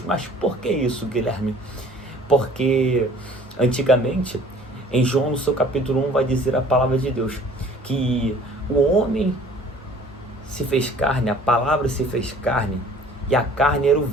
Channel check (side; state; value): both; normal; correlation 0.51